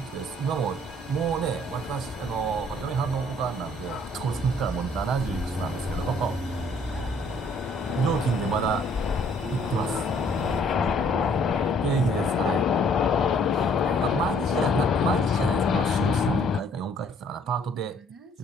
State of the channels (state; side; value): normal; both; correlation 0.61